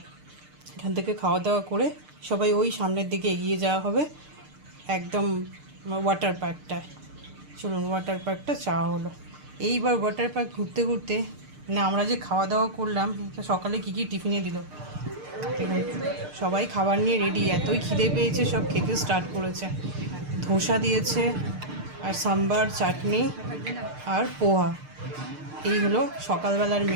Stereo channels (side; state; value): left; late; 6.6 ms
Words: এখান থেকে খাওয়া দাওয়া করে সবাই ওই সামনের দিকে এগিয়ে যাওয়া হবে একদম ওয়াটার পার্কটায়। চলুন ওয়াটার পার্কটা চাওয়া হলো। এইবার ওয়াটার পার্ক ঘুরতে ঘুরতে মানে আমরা যে খাওয়া দাওয়া করলাম, সকালে কী কী টিফিনে দিল দেখুন, সবাই খাবার নিয়ে রেডি, এতই খিদে পেয়েছে সব খেতে স্টার্ট করেছে। ধোসা দিয়েছে আর সাম্বার, চাটনি আর পোহা, এই হলো সকালবেলার